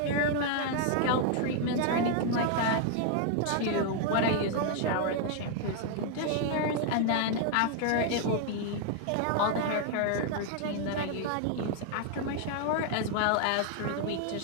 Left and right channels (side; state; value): both; different; correlation 0.00